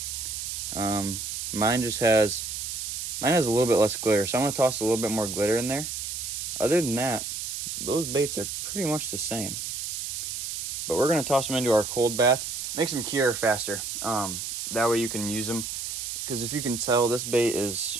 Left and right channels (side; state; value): right; noise; hiss, 5 dB below the sound